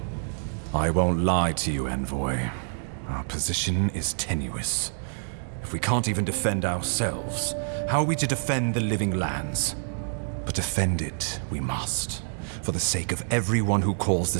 I won't lie to you, Envoy. Our position is tenuous. If we can't even defend ourselves, how are we to defend the living lands? But defend it we must, for the sake of everyone who calls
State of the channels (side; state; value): left; silent; digital silence